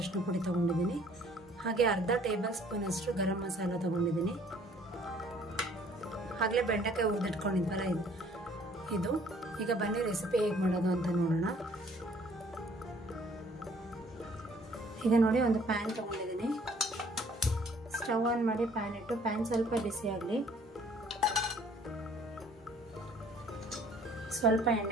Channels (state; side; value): normal; both; correlation 0.58